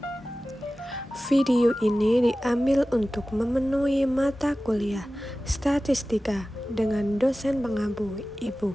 3. Video ini diambil untuk memenuhi mata kuliah Statistika dengan dosen pengampu Ibu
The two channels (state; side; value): normal; both; correlation 0.96